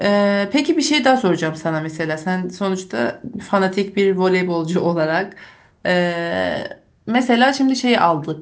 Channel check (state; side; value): identical; both; correlation 1.00